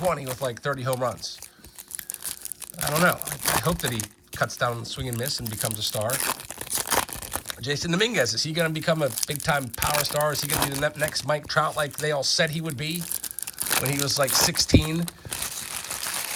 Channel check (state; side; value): identical; both; correlation 1.00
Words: with like 30 home runs? I don't know. I hope that he cuts down on the swing and miss and becomes a star. Jason Dominguez, is he going to become a big-time power star? Is he going to be the next Mike Trout like they all said he would be when he was like 16?